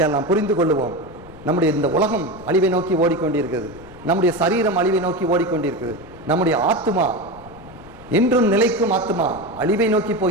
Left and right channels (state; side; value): noise; left; rumble, 21 dB below the sound